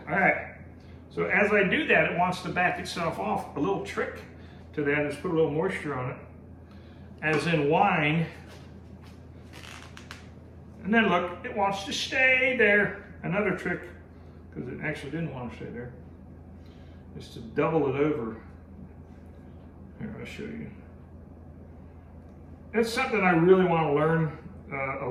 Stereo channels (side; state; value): both; identical; correlation 1.00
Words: so as I do that, it wants to back itself off. A little trick to that is put a little moisture on it, as in wine. And then look, it wants to stay there. Another trick, because it actually didn't want to stay there, is to double it over. Here, I'll show you. It's something I really want to learn a